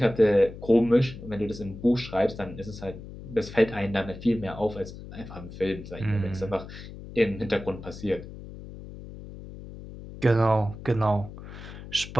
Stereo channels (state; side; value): noise; left; hum, 13 dB below the sound